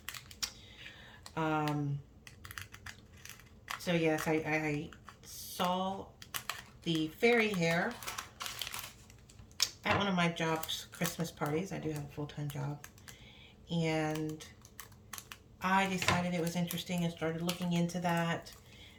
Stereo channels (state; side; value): identical; both; correlation 1.00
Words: So yes, I saw the fairy hair at one of my job's Christmas parties. I do have a full-time job. And I decided it was interesting and started looking into that